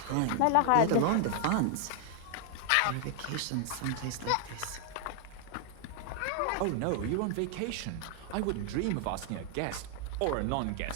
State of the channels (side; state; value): both; different; correlation 0.00